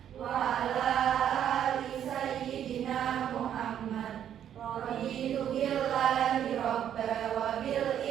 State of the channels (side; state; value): left; quieter; 9.9 dB